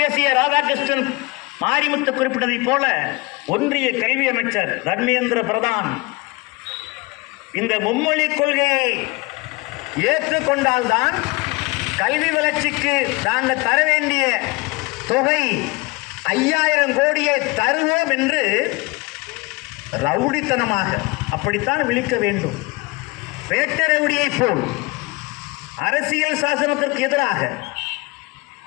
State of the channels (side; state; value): right; quieter; 25.2 dB